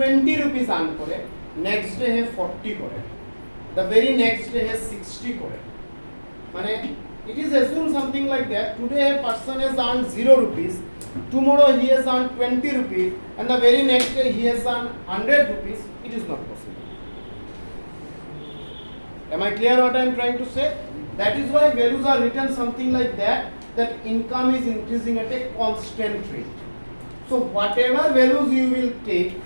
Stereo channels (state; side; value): inverted; both; correlation -1.00